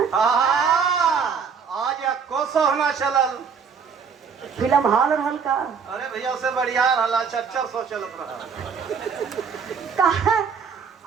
आज या कोसो होना चलल फिल्म हाल रहल का। अरे भैया से बढ़िया रहला 400 चलत रहा।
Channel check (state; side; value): quieter; left; 6.2 dB